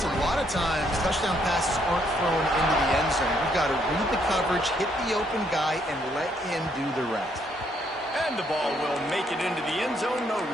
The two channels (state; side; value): normal; both; correlation 0.71